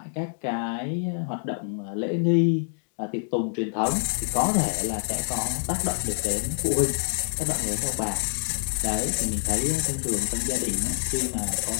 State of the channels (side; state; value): right; silent; digital silence